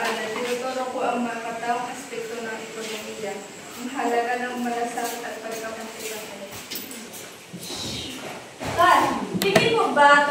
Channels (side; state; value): both; identical; correlation 1.00